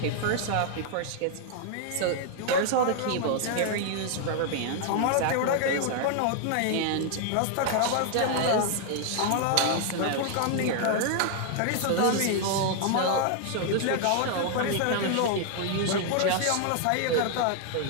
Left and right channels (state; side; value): different; both; correlation 0.00